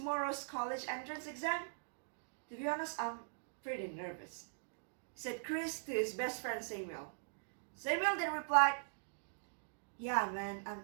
college entrance exam? To be honest, I'm pretty nervous, said Chris to his best friend Samuel. Samuel then replied, Yeah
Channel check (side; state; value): left; silent; digital silence